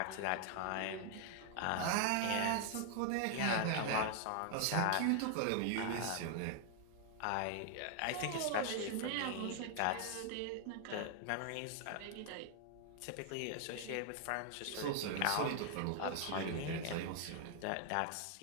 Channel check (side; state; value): both; different; correlation 0.00